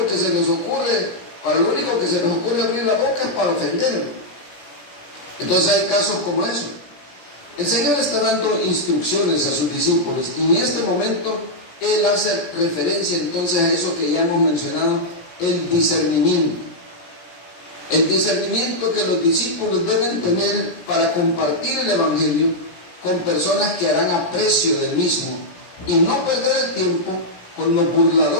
que se les ocurre abrir la boca es para ofender. Entonces hay casos como eso. El Señor está dando instrucciones a sus discípulos, y en este momento Él hace referencia entonces a eso que ya hemos mencionado, el discernimiento. El discernimiento que los discípulos deben tener para compartir el Evangelio con personas que harán aprecio del mismo y no perder el tiempo con los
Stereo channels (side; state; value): right; late; 17 ms